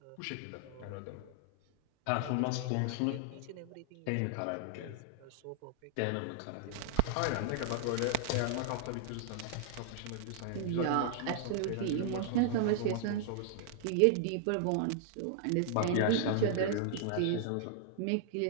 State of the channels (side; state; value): both; different; correlation -0.01